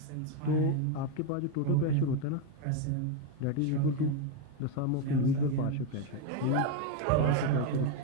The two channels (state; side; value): different; both; correlation 0.03